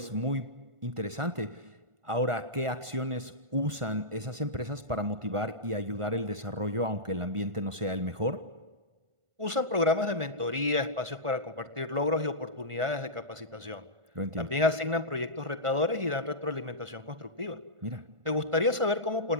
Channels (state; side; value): late; left; 1.5 ms